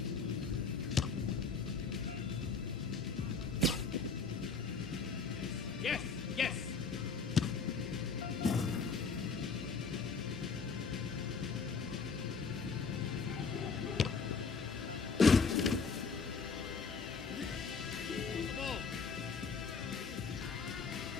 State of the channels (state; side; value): quieter; right; 4.8 dB